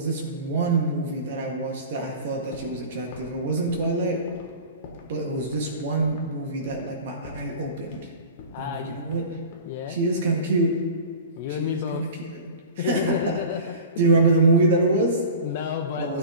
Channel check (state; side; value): inverted; both; correlation -0.36